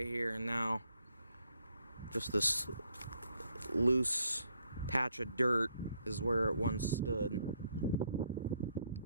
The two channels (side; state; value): both; inverted; correlation -0.72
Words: here, and now just this loose patch of dirt is where it once stood.